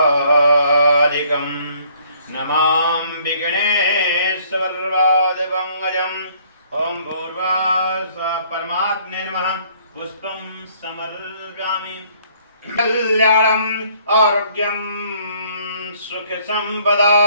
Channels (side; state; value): both; inverted; correlation -0.62